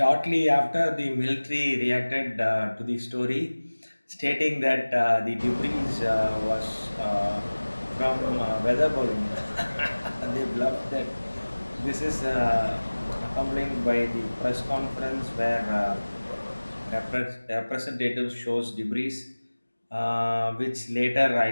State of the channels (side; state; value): both; inverted; correlation -1.00